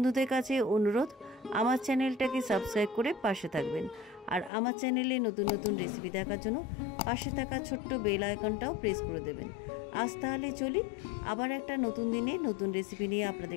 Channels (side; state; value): right; drops out; at 4.5 s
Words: কাছে অনুরোধ আমার চ্যানেলটাকে সাবস্ক্রাইব করে পাশে থাকবেন। আর আমার চ্যানেলে নতুন নতুন রেসিপি দেখার জন্য পাশে থাকা ছোট্ট বেল আইকনটাও প্রেস করে দেবেন। আজ তাহলে চলি, আবার একটা নতুন দিনে নতুন রেসিপি নিয়ে আপনাদের